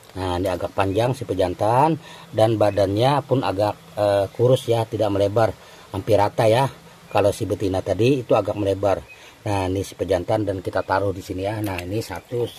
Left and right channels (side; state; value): both; identical; correlation 1.00